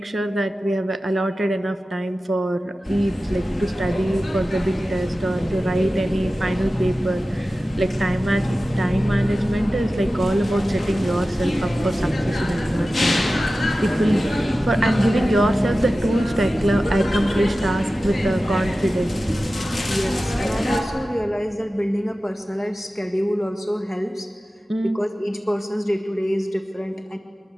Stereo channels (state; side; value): normal; both; correlation 0.95